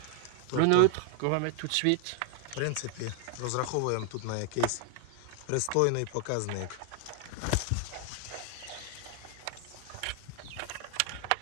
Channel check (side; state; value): both; different; correlation 0.00